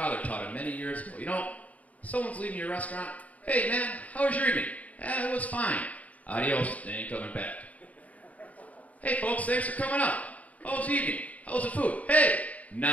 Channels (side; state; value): right; late; 0.071 ms